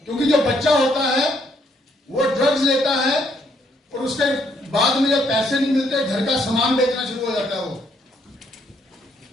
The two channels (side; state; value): both; normal; correlation 0.71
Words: क्योंकि जो बच्चा होता है वो ड्रग्स लेता है और उसके बाद में जब पैसे नहीं मिलते घर का सामान बेचना शुरू हो जाता है। वो